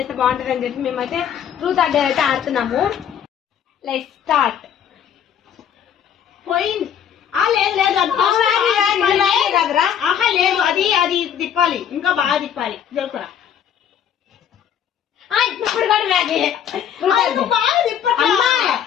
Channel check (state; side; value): quieter; right; 9.0 dB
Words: బాగుంటుంది అని చెప్పి మేమైతే ట్రూత్ ఆర్ డేర్ అయితే ఆడుతున్నాము. Let's start. పోయింది. లేదు లేదు, అది అది తిప్పాలి, ఇంకా బాగా తిప్పాలి. జరుపురా ఇప్పుడు కూడా మ్యాగీ బాగా తిప్పమ్మా,